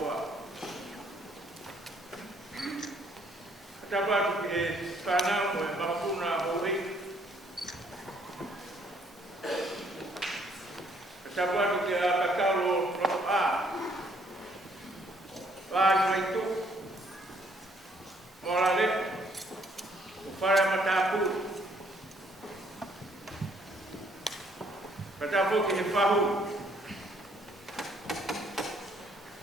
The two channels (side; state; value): both; normal; correlation 0.66